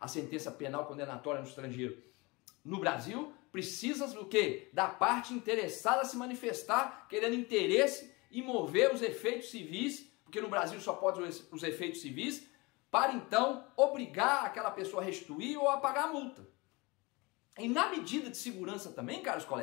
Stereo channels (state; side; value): quieter; right; 25.2 dB